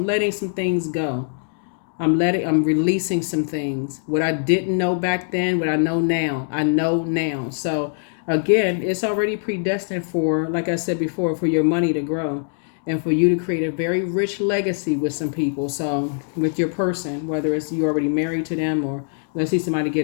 letting some things go. I'm releasing some things. What I didn't know back then, what I know now. I know now. So again, it's already predestined for, like I said before, for your money to grow and for you to create a very rich legacy with some people. So with your person, whether it's you already married to them or let's see somebody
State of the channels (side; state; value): right; silent; digital silence